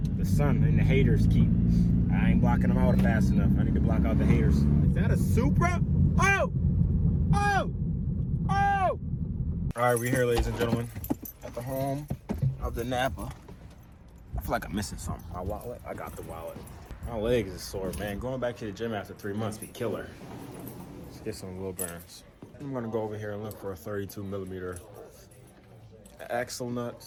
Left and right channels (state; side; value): identical; both; correlation 1.00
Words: The sun and the haters keep. I ain't blocking them out fast enough. I need to block out the haters. Is that a Supra? Oh! Oh! Oh! All right, we're here, ladies and gentlemen, at the home of the Napa. I feel like I'm missing something. My wallet? I got the wallet. My legs is sore, man. Going back to the gym after 3 months be killer. Let's get some wheel bearings. I'm gonna go over here and look for a 32mm axle nut,